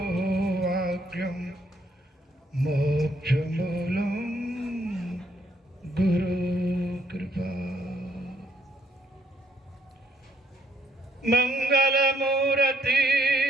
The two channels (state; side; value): normal; both; correlation 0.71